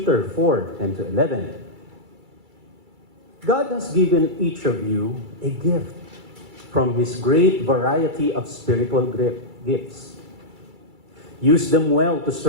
4:10-11. God has given each of you a gift from His great variety of spiritual gifts. Use them well to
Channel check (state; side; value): late; left; 2.3 ms